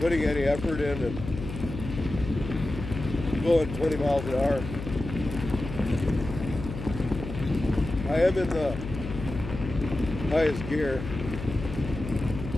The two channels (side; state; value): left; noise; hum, 8 dB below the sound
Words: any effort in and going 20 miles an hour. I am in the highest gear.